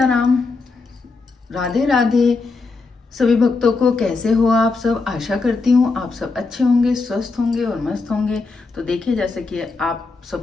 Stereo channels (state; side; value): quieter; right; 4.0 dB